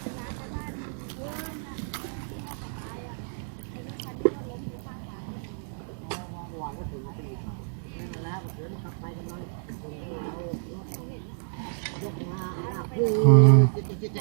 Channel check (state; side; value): silent; left; digital silence